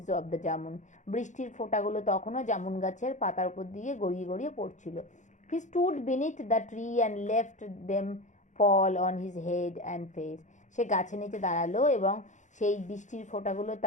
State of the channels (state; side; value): late; right; 0.35 ms